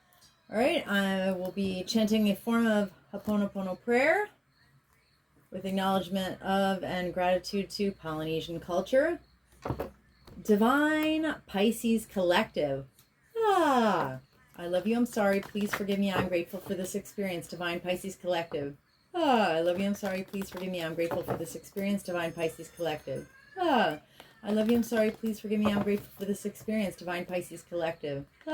All right, I will be chanting a form of Ho'oponopono prayer with acknowledgement of and gratitude to Polynesian culture. Divine Pisces Collective. Ah, I love you, I'm sorry, please forgive me, I'm grateful for this experience, Divine Pisces Collective. Ah, I love you, I'm sorry, please forgive me, I'm grateful for this experience, Divine Pisces Collective. Ah, I love you, I'm sorry, please forgive me, I'm grateful for this experience, Divine Pisces Collective.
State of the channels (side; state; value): both; identical; correlation 1.00